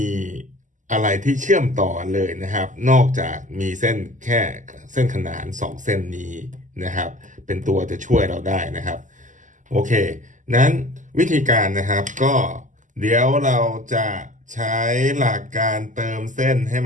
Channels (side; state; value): left; late; 0.37 ms